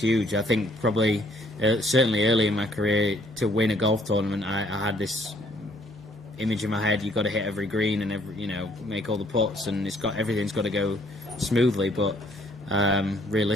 I think probably certainly early in my career to win a golf tournament, I had this image in my head: you've got to hit every green and make all the putts, and everything's got to go smoothly. But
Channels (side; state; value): both; normal; correlation 0.64